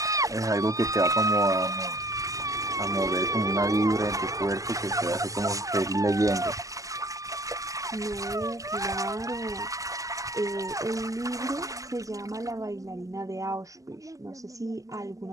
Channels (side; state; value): left; late; 0.16 ms